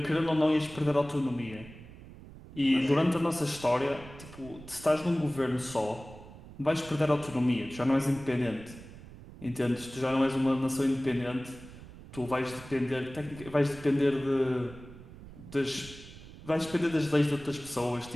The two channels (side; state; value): right; noise; rumble, 17 dB below the sound